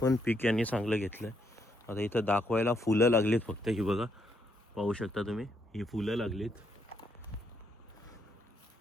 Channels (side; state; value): both; normal; correlation 0.75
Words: पण पीक यांनी चांगलं घेतलं आहे. आता इथं दाखवायला फुलं लागलीत फक्त. ही बघा पाहू शकता तुम्ही ही फुलं लागलीत.